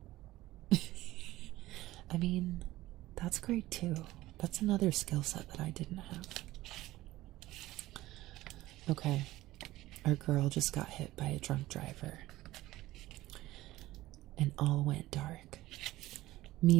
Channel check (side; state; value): left; quieter; 16.8 dB